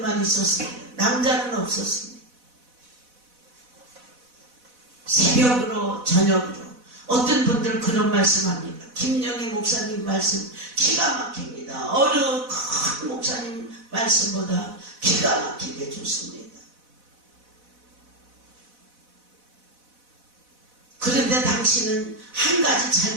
있었습니다. 남자는 없었습니다. 새벽으로 저녁으로 어떤 분들은 그런 말씀합니다. 김영희 목사님 말씀 기가 막힙니다. 어느 큰 목사님 말씀보다 기가 막히게 좋습니다. 그런데 당신은 한 가지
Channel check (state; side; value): late; left; 4.1 ms